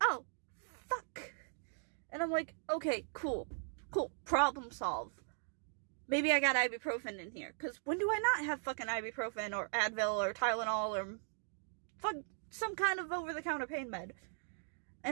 oh, fuck. And I'm like, okay, cool, problem solved. Maybe I got ibuprofen in here, because when do I not have fucking ibuprofen or Advil or Tylenol or fuck some kind of over-the-counter pain med?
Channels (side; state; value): left; silent; digital silence